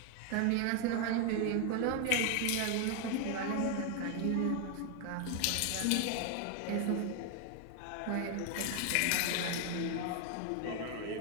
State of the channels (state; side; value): different; both; correlation 0.00